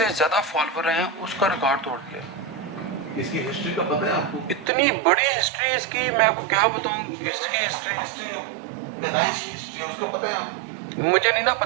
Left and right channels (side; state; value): left; drops out; at 4.7 s